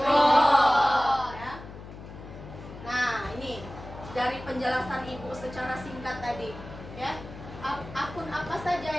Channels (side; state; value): left; noise; hum, 14 dB below the sound